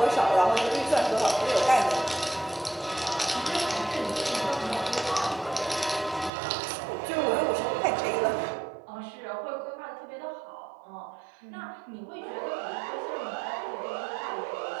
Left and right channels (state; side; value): drops out; left; at 6.3 s